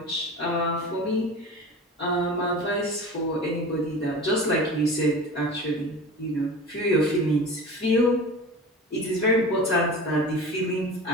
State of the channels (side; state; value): both; normal; correlation 0.35